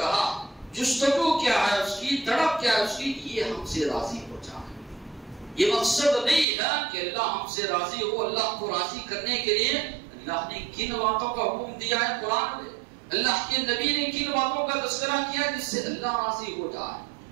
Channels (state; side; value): drops out; left; at 6.5 s